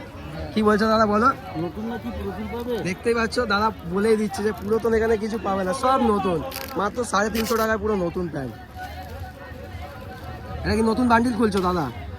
কি বলছো দাদা বলো? নতুন নাকি পুরাতন পাবে? দেখতেই পাচ্ছ দাদা বলেই দিচ্ছে যে পুরাতন এখানে কিছু পাবে না, সব নতুন। মাত্র 350 টাকায় পুরো নতুন প্যান্ট। এটা কি নতুন বান্ডিল খুলছো দাদা?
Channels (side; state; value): both; identical; correlation 1.00